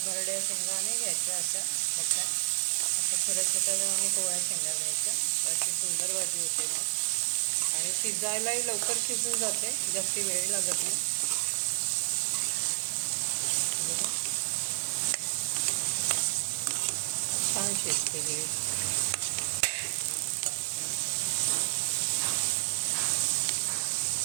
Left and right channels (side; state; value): left; silent; 58 dB below the other